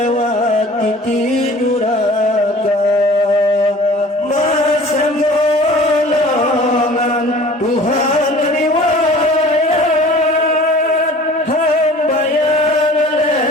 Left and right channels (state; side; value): normal; both; correlation 0.46